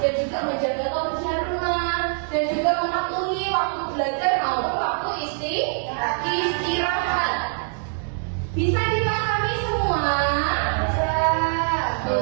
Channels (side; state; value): left; silent; 57 dB below the other